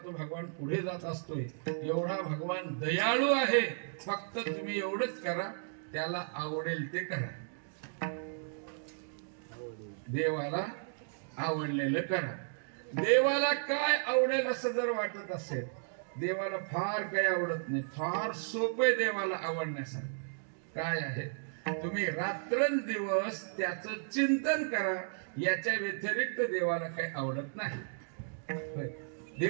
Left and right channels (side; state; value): left; silent; digital silence